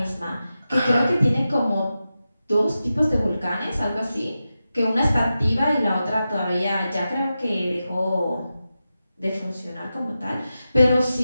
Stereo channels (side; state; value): both; inverted; correlation -0.92